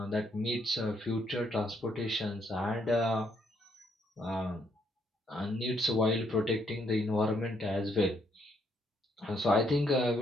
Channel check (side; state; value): both; normal; correlation 0.72